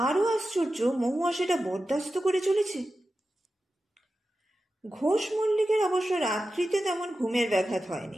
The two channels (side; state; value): both; normal; correlation 0.92